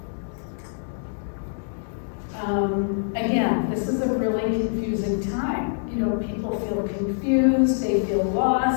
Again, this is a really confusing time. You know, people feel confused, they feel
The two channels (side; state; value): right; silent; digital silence